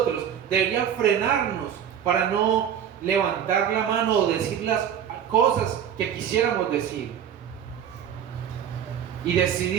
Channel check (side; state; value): left; quieter; 9.0 dB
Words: debería frenarnos para no levantar la mano o decir las cosas que quisiéramos decir y